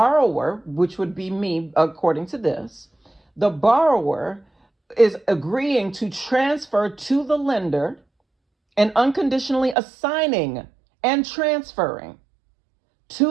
which would be me, according to this, the borrower is agreeing to transfer to the lender and unconditionally assigning and transferring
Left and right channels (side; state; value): left; drops out; at 9.8 s